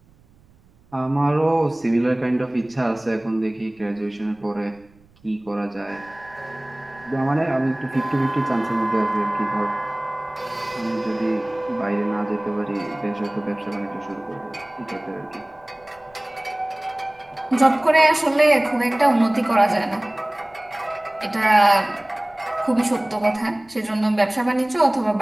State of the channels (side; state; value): right; noise; rumble, 30 dB below the sound